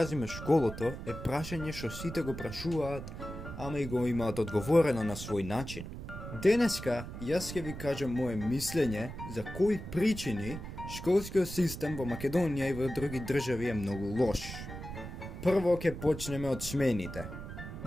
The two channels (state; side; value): noise; right; rumble, 9 dB below the sound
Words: школото е прашање што сите го прашуваат, ама и го имаат одговорено на свој начин. Денеска јас ќе ви кажам моje мислење за кои причини школскиот систем во Македонија и во други држави е многу лош. Прво ќе почнеме од смените.